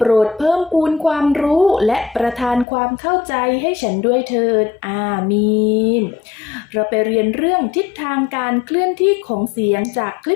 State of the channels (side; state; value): right; drops out; at 2.7 s